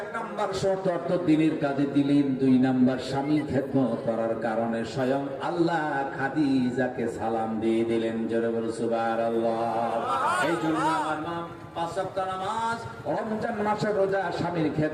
নাম্বার শর্ত অর্থ দিনের কাজে দিলেন, দুই নাম্বার স্বামী খেদমত করার কারণে স্বয়ং আল্লাহ খাদিজাকে সালাম দিয়ে দিলেন। জোরে বলে সুবহানাল্লাহ। এই জন্য আমার মা পাঁচ ওয়াক্ত নামাজ, রমজান মাসের রোজা, স্বামীর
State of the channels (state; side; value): identical; both; correlation 1.00